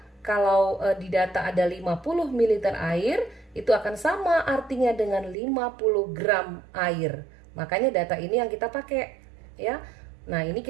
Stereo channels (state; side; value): drops out; left; at 5.4 s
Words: kalau di data ada 50 ml air, itu akan sama artinya dengan 50 gram air. Makanya data ini yang kita pakai ya. Nah, ini